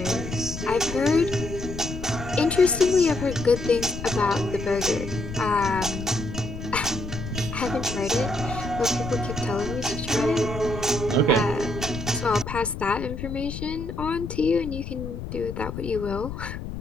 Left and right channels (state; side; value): noise; left; rumble, 8 dB below the sound